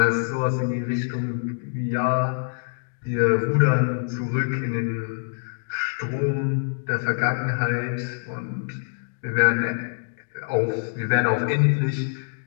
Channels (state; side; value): silent; right; digital silence